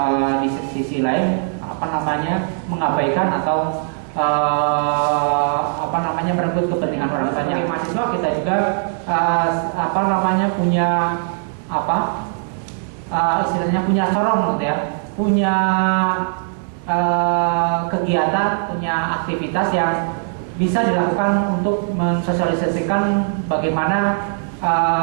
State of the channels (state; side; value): silent; left; 64 dB below the other